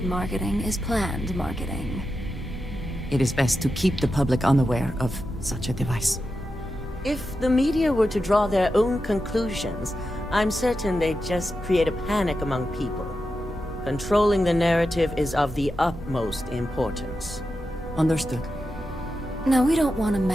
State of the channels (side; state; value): both; normal; correlation 0.89